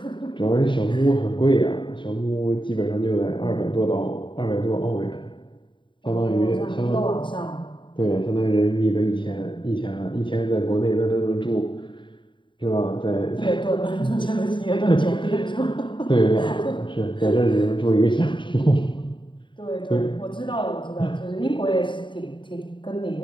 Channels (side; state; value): right; late; 0.23 ms